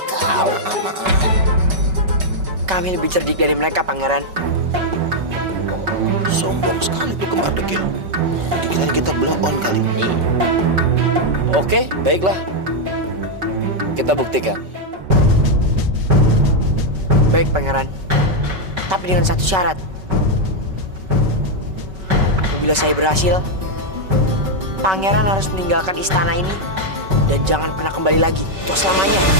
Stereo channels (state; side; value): late; left; 5.3 ms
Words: kau. Maaf. Kami lebih cerdik dari mereka, Pangeran. Sombong sekali tuh kembar dekil. Dikira kita blow on kali. Oke, baiklah. Kita buktikan. Baik, Pangeran. Tapi dengan satu syarat. Apabila saya berhasil, Pangeran harus meninggalkan istana ini dan jangan pernah kembali lagi untuk selamanya.